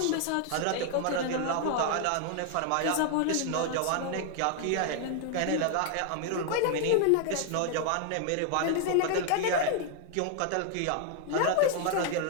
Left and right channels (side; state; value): both; different; correlation 0.00